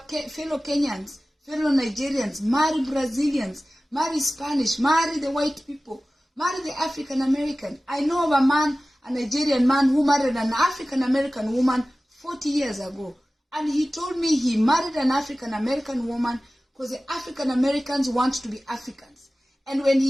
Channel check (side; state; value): both; normal; correlation 0.97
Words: Kenyans, fellow Nigerians. Marry Brazilians, marry Spanish, marry the white people, marry the African American. I know of a man, a Nigerian man who married an African American woman 40 years ago. And he told me he married an African American woman because the African Americans want to be Africans. And when